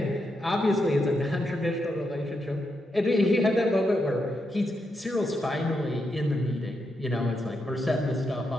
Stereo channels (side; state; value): both; normal; correlation 0.83